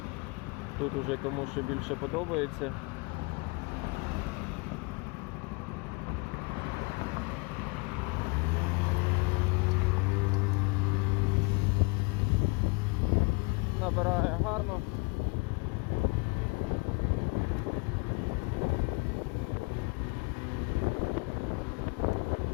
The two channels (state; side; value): quieter; right; 29.9 dB